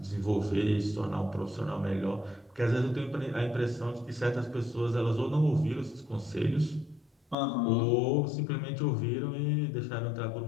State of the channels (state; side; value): drops out; right; at 7.4 s